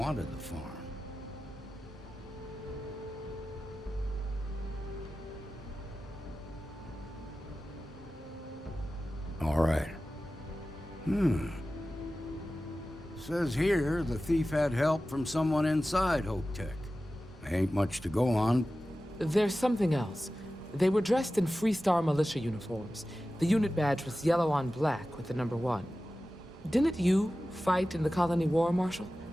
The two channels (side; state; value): both; normal; correlation 0.95